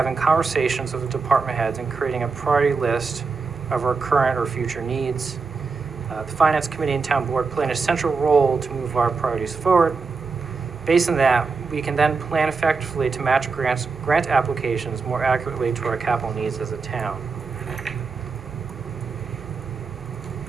conversations with the department heads and creating a priority list of our current or future needs. The Finance Committee and Town Board play an essential role to move our priorities forward. Based on that, we can then plan effectively to match grant applications more accurately to our capital needs as a town.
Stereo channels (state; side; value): quieter; left; 4.7 dB